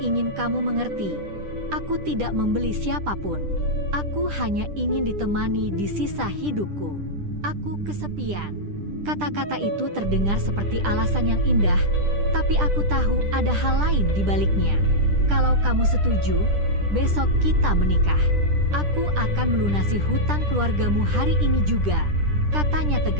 kamu mengerti, aku tidak membeli siapapun. Aku hanya ingin ditemani di sisa hidupku. Aku kesepian." Kata-kata itu terdengar seperti alasan yang indah, tapi aku tahu ada hal lain di baliknya. "Kalau kamu setuju, besok kita menikah. Aku akan melunasi hutang keluargamu hari ini juga," katanya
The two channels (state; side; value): late; left; 10 ms